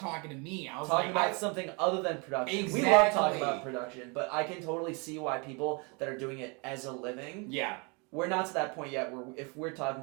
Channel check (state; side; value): quieter; left; 31.7 dB